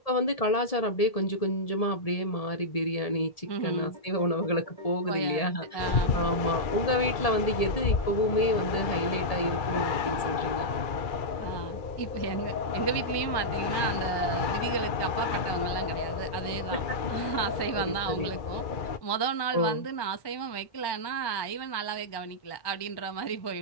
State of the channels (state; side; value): late; right; 1.7 ms